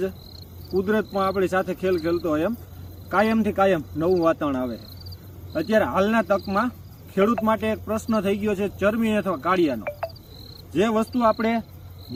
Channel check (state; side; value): identical; both; correlation 1.00